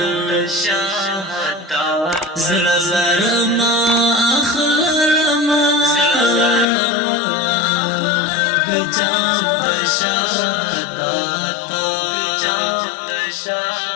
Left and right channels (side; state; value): right; drops out; at 6.7 s